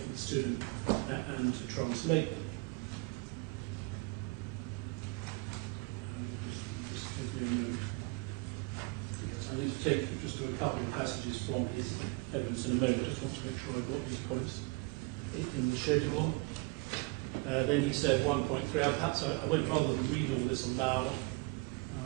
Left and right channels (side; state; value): left; quieter; 27.6 dB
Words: to him and to translate them. Just give me a moment. Yes, I need to take you just to a couple of passages from his evidence in a moment. I just want to make sure I've got these points in the schedule. Then he said 1.3. Perhaps I won't, rather than read all this aloud,